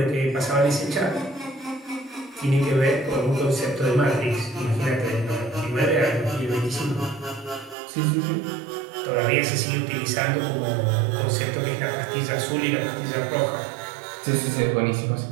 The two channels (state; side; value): drops out; left; at 7.8 s